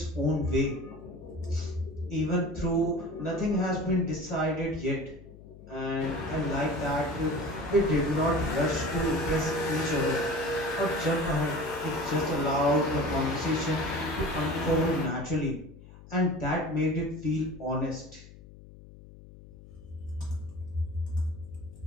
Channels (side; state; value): left; noise; hum, 19 dB below the sound